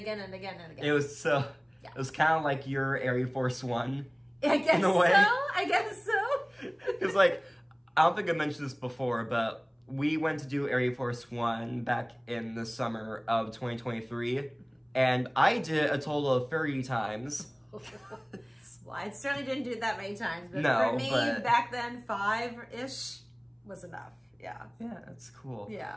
and again and again. It was It was kind of like your Air Force One. I guess in a way. I guess so. Because like, I don't think I mentioned this before, but we went to do Air Force One back in the summer of 2023, and I did a total of 30 times. Well, I certainly didn't do it that many times, but No, for me, but- back then, 5-ish was enough. Yeah. Yeah, that's cool.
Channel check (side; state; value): both; identical; correlation 1.00